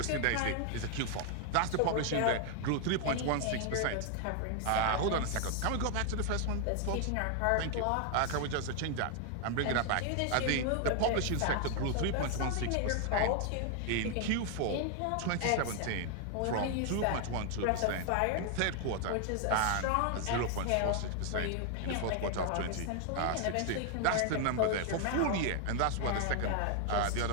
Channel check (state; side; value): different; both; correlation 0.00